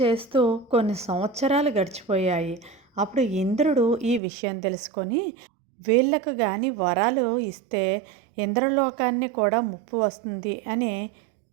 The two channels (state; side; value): drops out; left; at 4.2 s